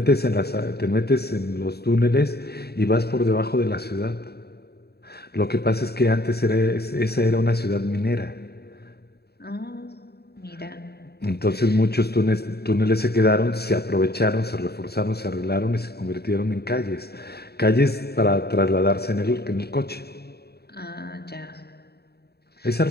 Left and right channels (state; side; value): late; right; 0.47 ms